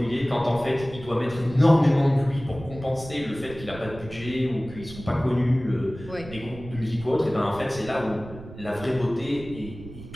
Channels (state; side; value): noise; right; rumble, 14 dB below the sound